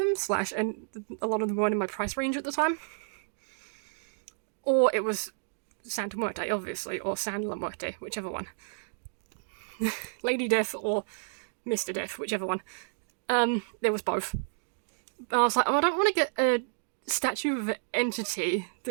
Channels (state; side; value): silent; left; digital silence